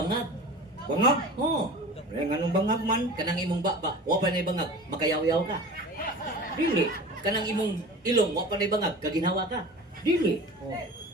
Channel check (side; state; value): both; normal; correlation 0.37